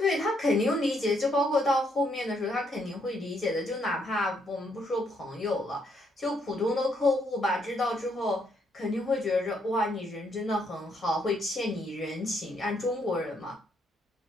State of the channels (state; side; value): normal; both; correlation 0.73